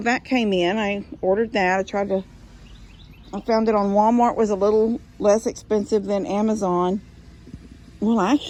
that came in. I ordered that. I found it on Walmart. Was a little less expensive than Amazon. Well,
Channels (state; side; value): identical; both; correlation 1.00